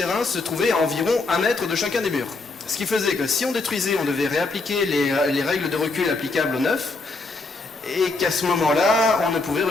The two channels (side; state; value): right; quieter; 3.6 dB